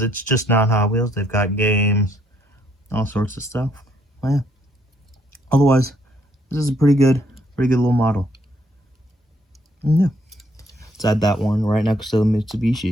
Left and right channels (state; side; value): normal; both; correlation 0.70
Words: it's just not Hot Wheels. They've got games, all sorts of stuff. Well, yeah. Otherwise, this is a pretty good little model. And yeah, let's add that one right next to the